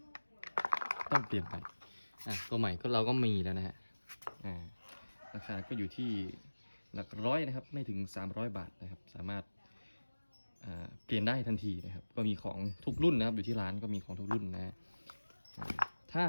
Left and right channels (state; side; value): inverted; both; correlation -1.00